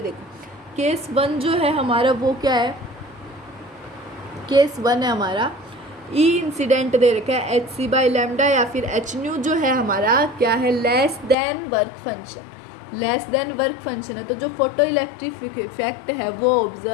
देखो केस 1 जो है हमारा वो क्या है, केस 1 है हमारा ई इंसिडेंट दे रखा है HC बाय लैम्डा, या फिर एच न्यू जो है हमारा क्या है, लेस देन वर्क फंक्शन है, तो जो फोटो इलेक्ट्रिक इफेक्ट है वो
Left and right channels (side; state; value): right; drops out; at 11.4 s